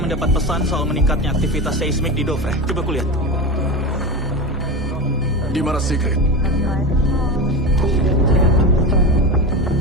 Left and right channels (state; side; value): normal; both; correlation 0.22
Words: mendapat pesan soal meningkatnya aktivitas seismik di Dovre. Coba kulihat. Di mana Sigrid?